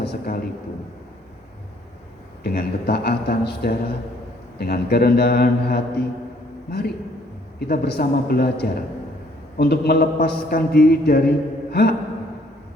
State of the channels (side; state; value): both; normal; correlation 0.63